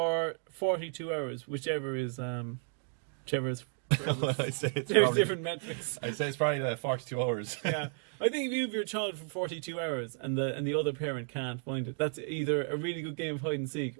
42 hours, whichever is... Whichever is... Well, I'd say it's There's probably... different metrics. I'd say it's probably 42 hours. Yeah, I think if you have your child for 42 hours and the other parent can't find it, that's either a really good game of hide and seek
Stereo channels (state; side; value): silent; left; 56 dB below the other